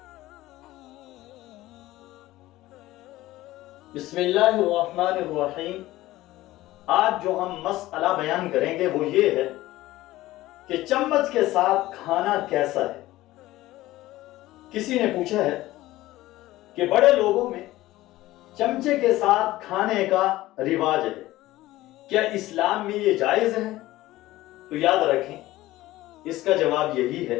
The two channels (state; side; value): quieter; right; 16.8 dB